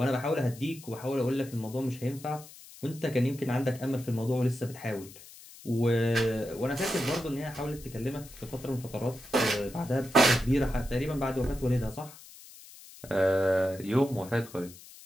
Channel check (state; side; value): noise; left; hiss, 19 dB below the sound